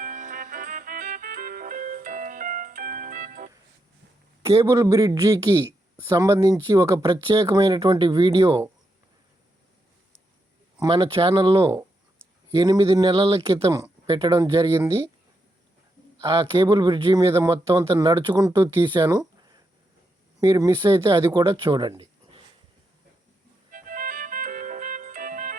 కేబుల్ బ్రిడ్జికి సంబంధించి ఒక ప్రత్యేకమైనటువంటి వీడియో మన ఛానల్లో 8 నెలల క్రితం పెట్టడం జరిగింది. ఆ కేబుల్ బ్రిడ్జి మీద మొత్తం అంతా నడుచుకుంటూ తీశాను. మీరు మిస్ అయితే అది కూడా చూడండి.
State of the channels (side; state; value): both; normal; correlation 0.83